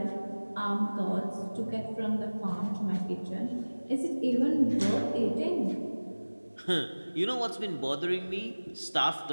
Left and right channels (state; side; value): inverted; both; correlation -1.00